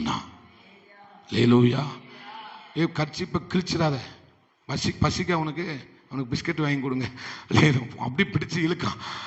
லேலூயா. கர்ச்சிப்பை கிழிச்சிடாத, பசிக்க அவனுக்கு பிஸ்கட் வாங்கி கொடுங்க, அப்படி பிடிச்சு இழுக்கான்.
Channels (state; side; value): identical; both; correlation 1.00